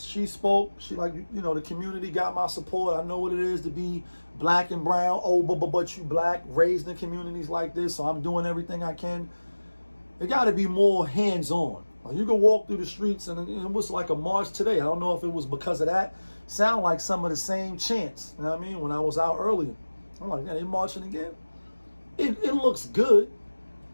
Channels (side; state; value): both; inverted; correlation -1.00